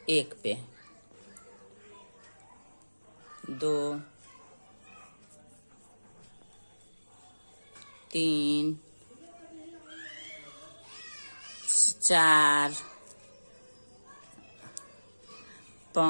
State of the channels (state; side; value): inverted; both; correlation -1.00